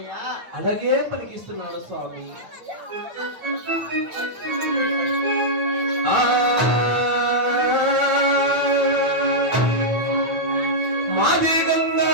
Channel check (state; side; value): late; left; 9.0 ms